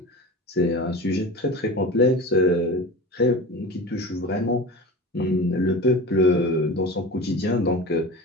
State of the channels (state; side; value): normal; both; correlation 0.32